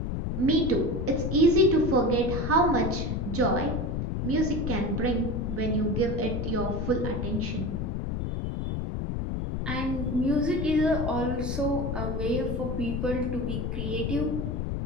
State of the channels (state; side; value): noise; left; rumble, 2 dB below the sound